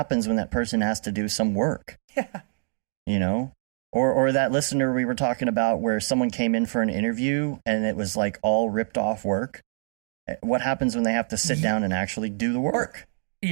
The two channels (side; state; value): left; silent; digital silence